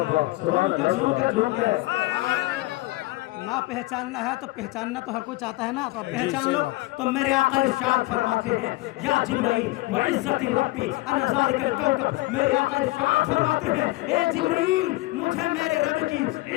نہ پہچاننا ہے تو پہچاننا تو ہر کوئی چاہتا ہے نا, تو آپ پہچان لو. تو میرے آقا ارشاد فرماتے ہیں یا جبرائیل وعزت ربی انا ذالک الکوکب, میرے آقا ارشاد فرماتے ہیں اے جبرائیل مجھے میرے رب کی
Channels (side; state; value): right; quieter; 20.4 dB